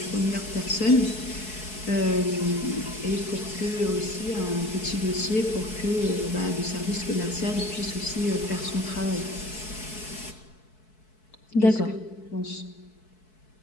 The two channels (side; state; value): right; late; 4.6 ms